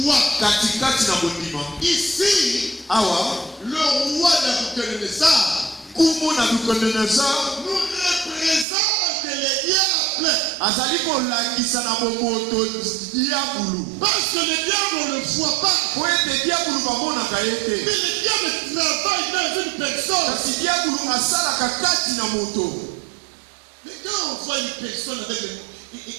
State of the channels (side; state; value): left; drops out; at 8.7 s